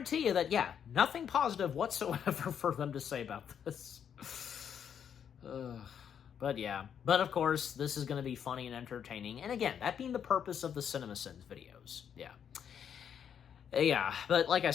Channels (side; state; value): right; quieter; 8.3 dB